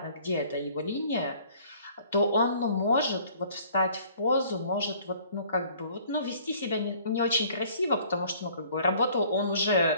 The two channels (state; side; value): inverted; both; correlation -0.56